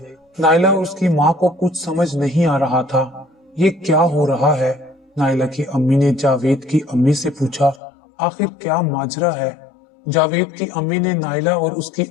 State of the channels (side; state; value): right; drops out; at 7.8 s